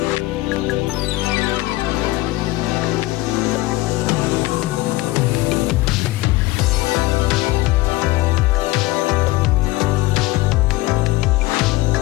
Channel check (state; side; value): quieter; right; 19.2 dB